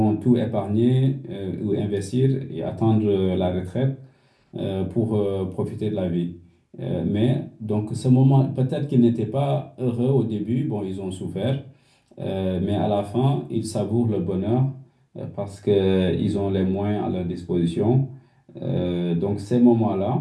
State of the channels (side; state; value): both; identical; correlation 1.00